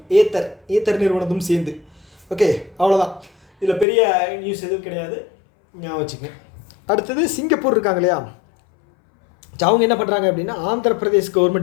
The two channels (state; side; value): drops out; right; at 3.9 s